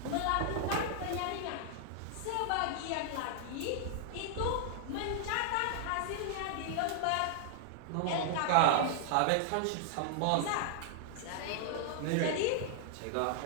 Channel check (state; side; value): different; both; correlation -0.01